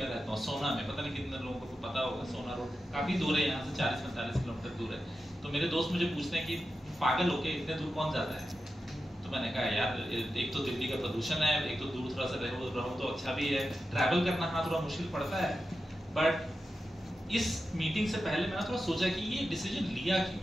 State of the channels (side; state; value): both; normal; correlation 0.91